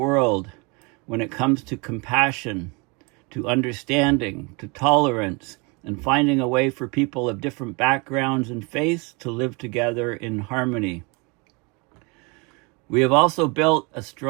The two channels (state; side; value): quieter; left; 29.8 dB